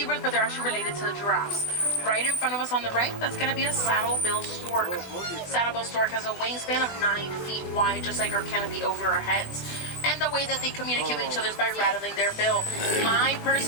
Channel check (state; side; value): late; right; 20 ms